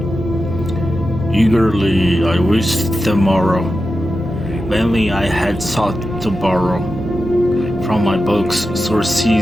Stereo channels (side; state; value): both; normal; correlation 0.91